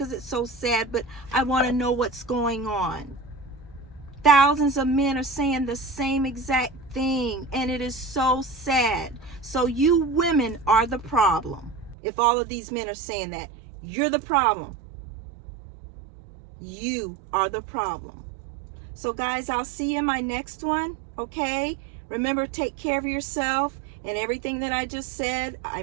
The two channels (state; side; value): drops out; left; at 12.0 s